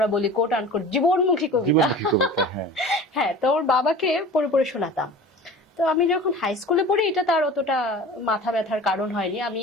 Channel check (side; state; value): both; normal; correlation 0.39